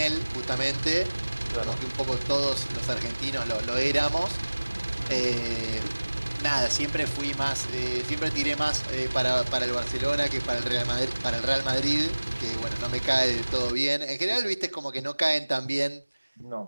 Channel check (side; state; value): both; inverted; correlation -1.00